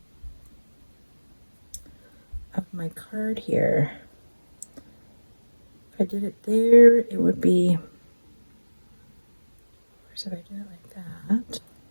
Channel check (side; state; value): both; inverted; correlation -1.00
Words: of my card here. If I did it there, it would be, where's if I did it like that?